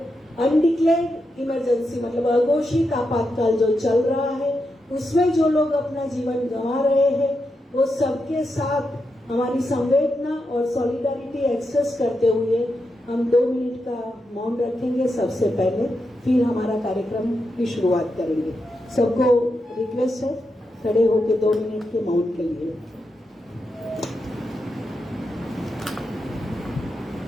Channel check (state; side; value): normal; both; correlation 0.86